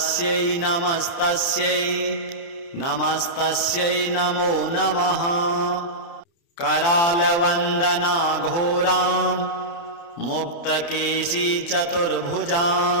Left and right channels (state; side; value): late; right; 29 ms